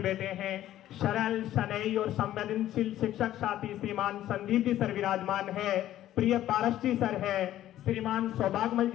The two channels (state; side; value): quieter; right; 13.1 dB